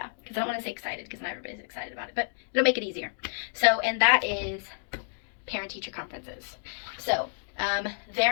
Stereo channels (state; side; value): silent; right; digital silence